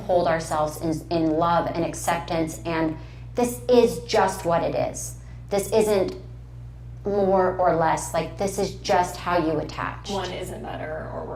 ourselves in love and acceptance, and this is just what it is. This isn't more or less, like this is just how you attach. One isn't better or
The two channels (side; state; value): both; identical; correlation 1.00